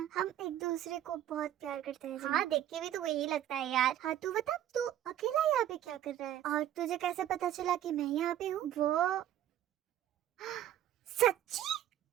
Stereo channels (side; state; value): left; quieter; 11.8 dB